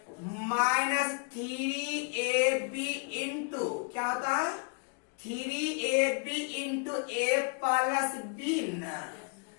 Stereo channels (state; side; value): quieter; right; 39.3 dB